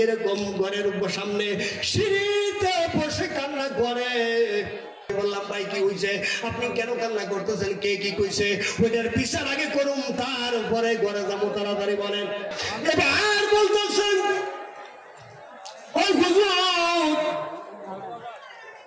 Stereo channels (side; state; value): both; identical; correlation 1.00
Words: এরকম ঘরের সামনে সিঁড়িতে বসে কান্না করে। বললাম ভাই কি হয়েছে, আপনি কেন কান্না করতেছেন, কে কি কইছে? ওইটার বিচার আগে করুন, তারপরে ঘরে যাবো, তাড়াতাড়ি বলেন। এবার বলতেছেন